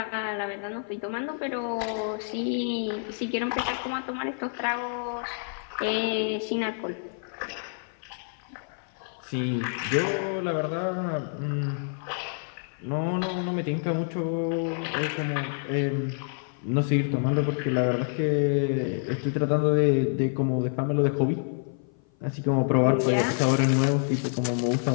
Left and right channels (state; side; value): silent; right; 56 dB below the other